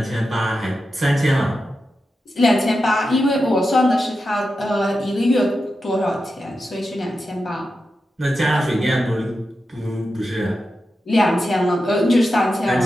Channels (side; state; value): both; normal; correlation 0.90